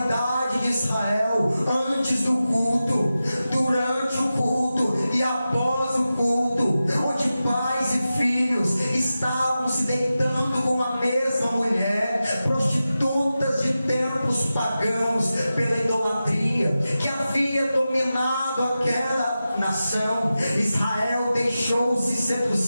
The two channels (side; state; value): both; inverted; correlation -0.93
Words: de Israel antes do culto, durante o culto e após o culto, onde pais e filhos estavam se deitando com a mesma mulher, prostitutas de tempos pagãos, pela idolatria que havia dominado aquela nação. Israel deixou-se